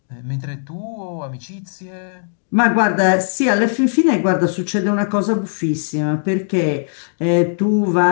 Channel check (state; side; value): silent; right; digital silence